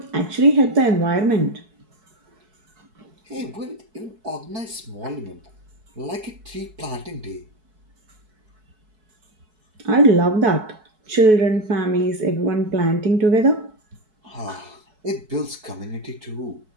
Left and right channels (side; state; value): left; late; 4.6 ms